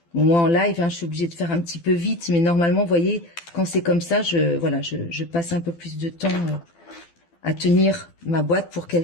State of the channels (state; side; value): late; right; 12 ms